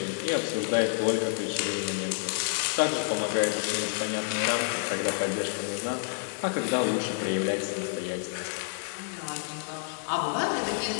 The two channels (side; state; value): right; silent; digital silence